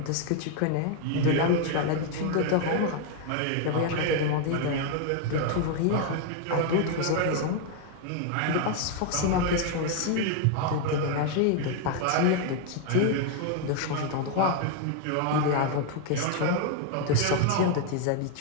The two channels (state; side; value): different; both; correlation 0.00